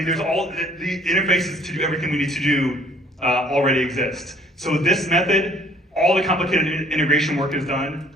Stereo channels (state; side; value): normal; both; correlation 0.58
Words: there's all the interfaces to do everything we need to do already exist. So this method, all the complicated integration work is done.